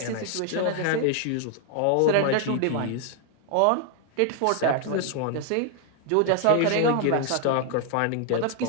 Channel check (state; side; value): different; both; correlation 0.00